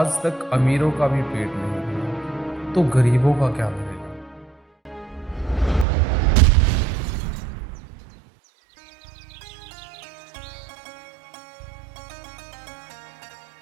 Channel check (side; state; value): left; drops out; at 5.9 s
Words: तक अमीरों का भी पेट नहीं भरा, तो गरीबों का क्या भरेगा।